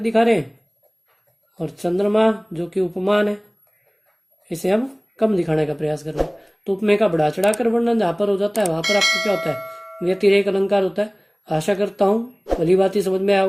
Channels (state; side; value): identical; both; correlation 1.00